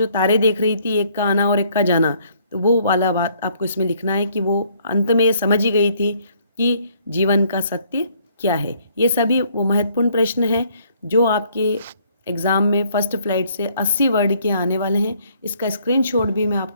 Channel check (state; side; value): inverted; both; correlation -0.64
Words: तारे देख रही थी, एक का आना और एक का जाना, तो वो वाला बात आपको इसमें लिखना है कि वो अंत में ये समझ ही गई थी कि जीवन का सत्य क्या है। ये सभी वो महत्वपूर्ण प्रश्न हैं जो आपके एग्ज़ाम में फर्स्ट फ्लाइट से 80 वर्ड के आने वाले हैं। इसका स्क्रीनशॉट भी मैं